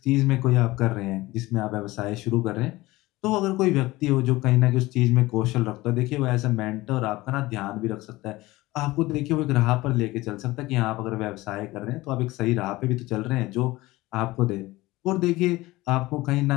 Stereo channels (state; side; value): quieter; right; 19.4 dB